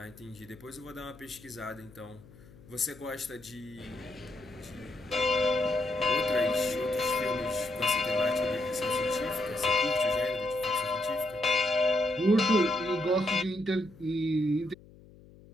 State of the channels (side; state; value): left; noise; hum, 22 dB below the sound